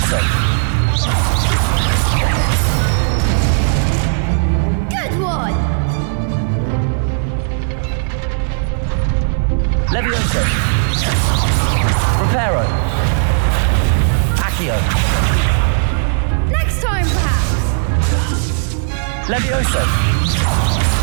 Good one! Levioso! Reparo! Accio! Next time, perhaps! Levioso!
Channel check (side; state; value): left; silent; 55 dB below the other